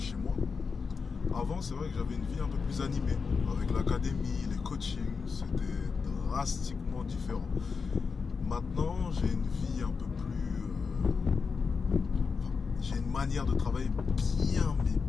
chez moi. Avant, c'est vrai que j'avais une vie un peu plus animée. Avec l'académie, les coachings, c'était drastiquement différent. Maintenant, j'ai une vie un peu plus... j'ai une manière de travailler bien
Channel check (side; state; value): right; quieter; 5.2 dB